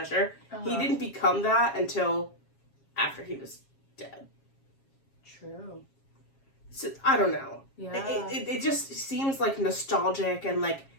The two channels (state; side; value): late; right; 7.3 ms